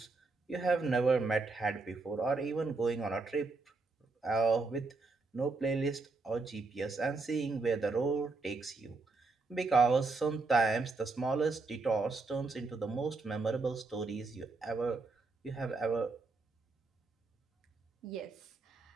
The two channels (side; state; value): left; quieter; 3.8 dB